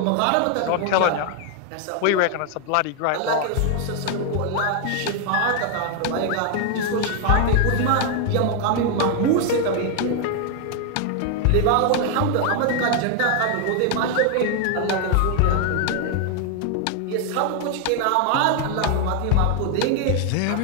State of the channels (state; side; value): different; both; correlation 0.00